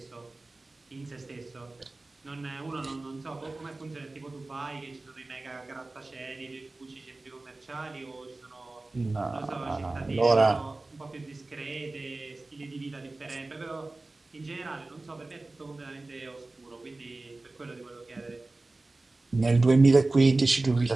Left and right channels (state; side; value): quieter; left; 3.1 dB